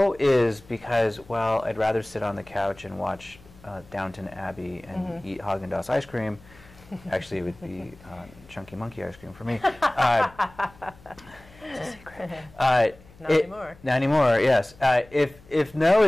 is because, well, I'd rather sit on the couch and watch Downton Abbey and eat Haagen-Dazs ice cream, actually it would be Chunky Monkey ice cream for me. It's a secret. Not anymore. Not anymore, yes. If no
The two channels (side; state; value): left; noise; hum, 24 dB below the sound